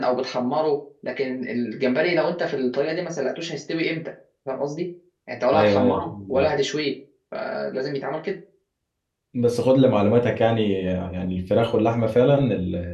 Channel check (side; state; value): both; identical; correlation 1.00